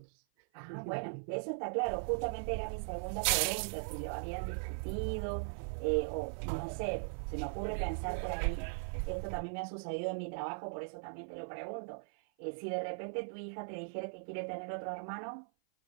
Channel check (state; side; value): silent; left; 52 dB below the other